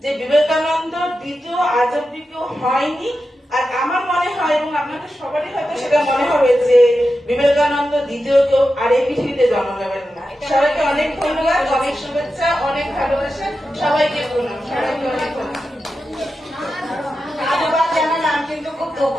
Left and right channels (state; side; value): normal; both; correlation 0.90